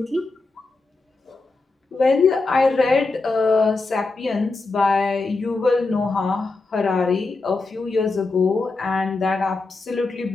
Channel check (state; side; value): quieter; right; 3.6 dB